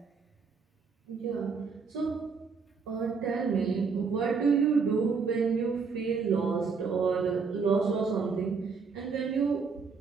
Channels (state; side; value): quieter; left; 5.2 dB